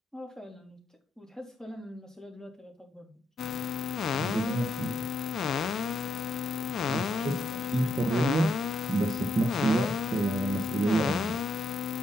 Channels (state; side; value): normal; both; correlation 0.78